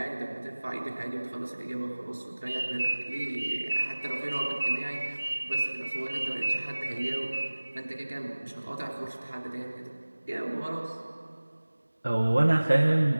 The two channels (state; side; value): inverted; both; correlation -1.00